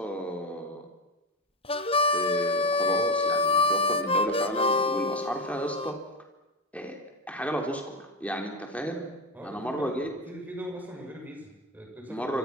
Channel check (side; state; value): both; normal; correlation 0.15